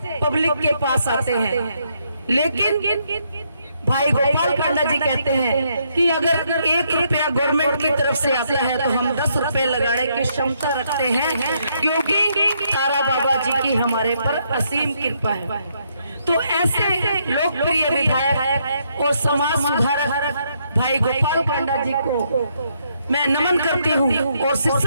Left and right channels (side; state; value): both; inverted; correlation -0.74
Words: पब्लिक के पास आते हैं। लेकिन भाई गोपाल कांडा जी कहते हैं कि अगर 1 रुपया गवर्नमेंट की तरफ से आता है तो हम 10 रुपए लगाने की क्षमता रखते हैं, क्योंकि तारा बाबा जी की हमारे पर असीम कृपा है। तो ऐसे लोकप्रिय विधायक और समाज सुधारक भाई गोपाल कांडा जी को मैं नमन करती हूँ और